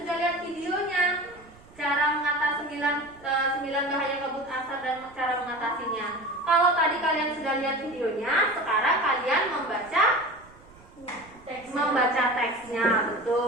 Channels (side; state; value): right; noise; rumble, 25 dB below the sound